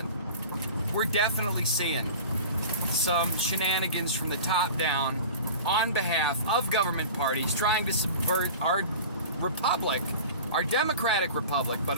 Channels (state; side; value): inverted; both; correlation -0.38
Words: we're definitely seeing some shenanigans from the top down on behalf of government parties trying to subvert our republic, our democratic republic, but